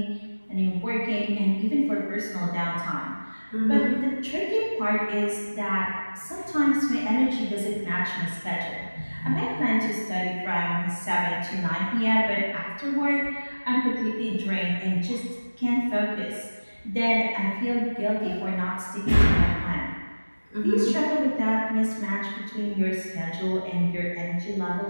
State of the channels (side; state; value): both; inverted; correlation -1.00